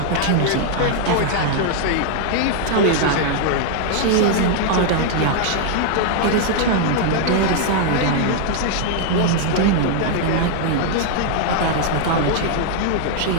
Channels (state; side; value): different; both; correlation 0.00